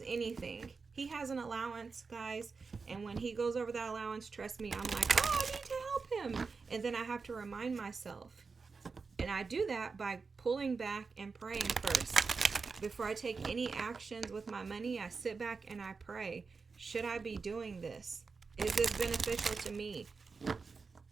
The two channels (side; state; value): left; quieter; 4.7 dB